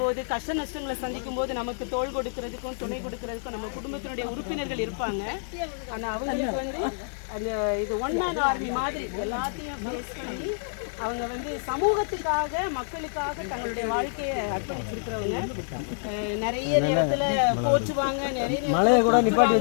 போது, கஷ்ட நஷ்டங்களை சந்திக்கும் போது நமக்கு தோள் கொடுக்கறதுக்கும் துணை கொடுக்கறதுக்கும் நம்ம குடும்பத்தினுடைய உறுப்பினர்கள் இருப்பாங்க. ஆனால் அவங்களுக்கு வந்து அந்த இது ஒன் மேன் ஆர்மி மாதிரி எல்லாத்தையும் ஃபேஸ் பண்ணி அவங்க வந்து சமூகத்துக்காக மக்களுக்காக தங்களுடைய வாழ்க்கையை அர்ப்பணிச்சிருக்கிறவங்க. நிறைய நேரத்தில் போற்றுவாங்க, நிறைய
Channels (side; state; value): right; silent; digital silence